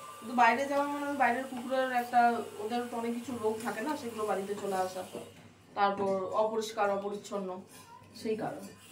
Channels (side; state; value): both; identical; correlation 1.00